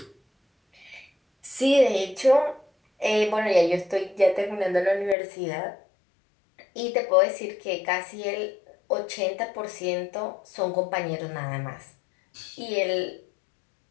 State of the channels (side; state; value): right; drops out; at 5.2 s